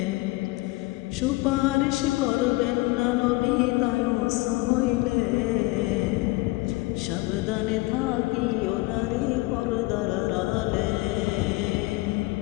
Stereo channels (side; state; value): right; quieter; 21.8 dB